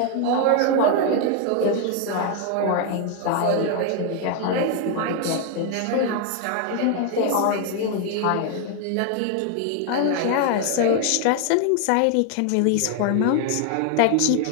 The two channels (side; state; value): both; different; correlation 0.00